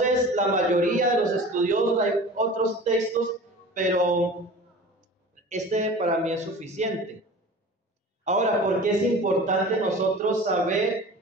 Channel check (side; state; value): both; normal; correlation 0.39